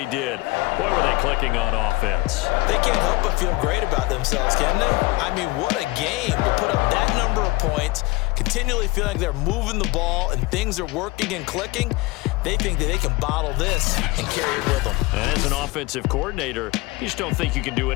did. Boy, were they clicking on offense. They can't help but feel great about themselves, can they? I mean, what a game to put up that number of points, continually feeling like they're moving the ball and things are working and clicking. They think that they can bottle this and carry it with them. As an offensive coordinator, you just don't think you can do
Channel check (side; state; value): right; quieter; 21.9 dB